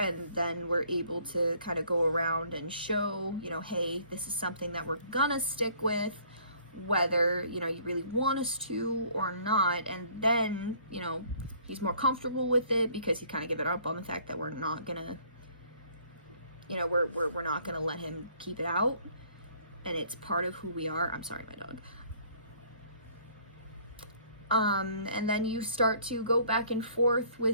then we're able to kind of go around and show, hey, this is something that we're gonna stick with, whether, you really want us to or not. And then, he's more comfortable with it because he kind of gave it up on the fact that we're not gonna You know, we're not going to let him keep it out, and it's part of who we are. I'm sorry, my dog. And then you start to go back and forth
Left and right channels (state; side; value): inverted; both; correlation -0.58